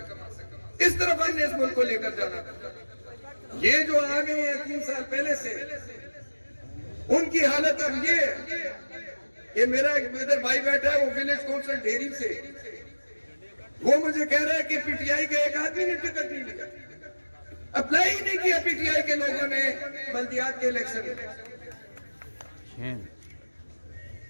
اس طرف ہم نے اس ملک کو لے کر جانا تھا۔ یہ جو آگے ہیں 3 سال پہلے سے، ان کی حالت اب یہ ہے کہ میرا ایک ادھر بھائی بیٹھا ہے وہ ولیج کونسل ڈھیری سے، وہ مجھے کہہ رہا ہے کہ پی ٹی آئی کا ایک آدمی نے ٹکٹ نہیں لیا، اپلائی ہی نہیں کیا پی ٹی آئی کے لوگوں نے بلدیات کے الیکشن میں۔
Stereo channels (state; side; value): inverted; both; correlation -1.00